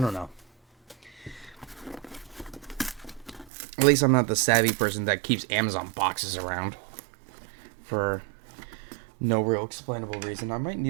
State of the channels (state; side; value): drops out; left; at 3.5 s